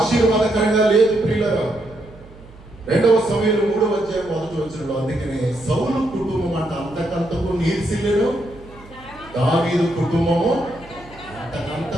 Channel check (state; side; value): noise; right; hum, 21 dB below the sound